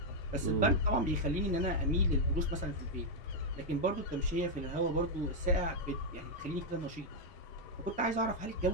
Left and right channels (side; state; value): both; normal; correlation -0.01